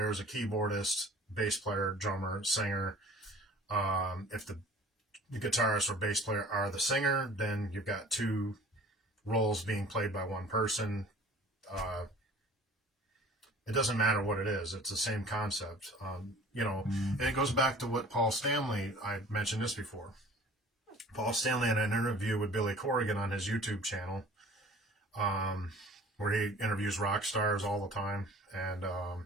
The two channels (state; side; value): normal; both; correlation 0.47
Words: a keyboardist, bass player, drummer, singer. If the guitarist or bass player are the singer, then you've got two roles being played by one person. It doesn't matter what it is. It's the same concept, and it goes back to what Paul Stanley, I mentioned this before. Paul Stanley had an interview with Billy Corrigan on his YouTube channel, where he interviews rock stars all the time. And